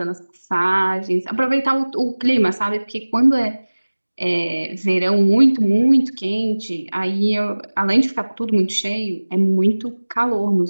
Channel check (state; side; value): inverted; both; correlation -1.00